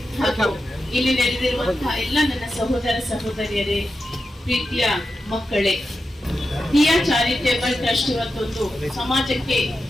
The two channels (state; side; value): normal; both; correlation 0.90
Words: ಹಾಗೂ ಇಲ್ಲಿ ನೆರೆದಿರುವಂತಹ ಎಲ್ಲ ನನ್ನ ಸಹೋದರ ಸಹೋದರಿಯರೇ, ಪ್ರೀತಿಯ ಮಕ್ಕಳೇ, ದಿಯಾ ಚಾರಿಟೇಬಲ್ ಟ್ರಸ್ಟ್ ಇವತ್ತೊಂದು